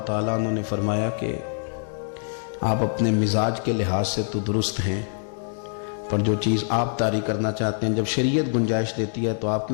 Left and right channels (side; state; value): right; silent; 62 dB below the other